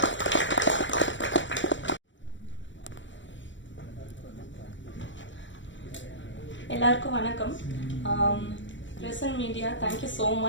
எல்லாருக்கும் வணக்கம். Present media, thank you so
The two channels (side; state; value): right; late; 0.54 ms